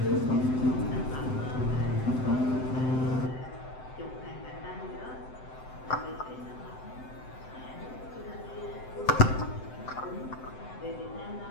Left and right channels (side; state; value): right; late; 7.8 ms